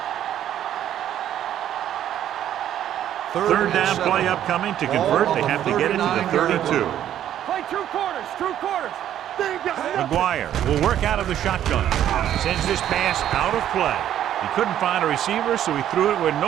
3rd down play upcoming. To convert, they have to get it to the 32. Play 2 quarters. 2 quarters. McGuire will work out of the shotgun. Sends this pass out of play. He couldn't find a receiver, so he threw it where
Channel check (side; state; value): left; quieter; 11.1 dB